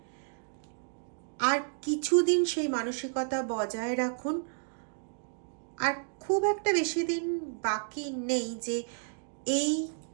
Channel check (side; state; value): left; silent; 57 dB below the other